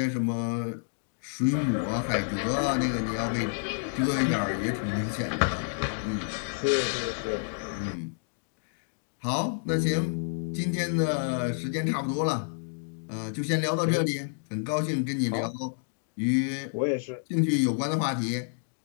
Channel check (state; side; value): silent; right; digital silence